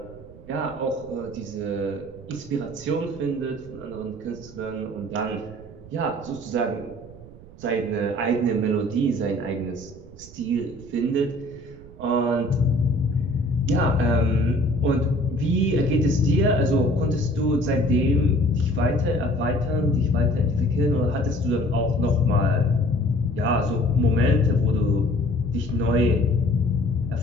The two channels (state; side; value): noise; right; rumble, 19 dB below the sound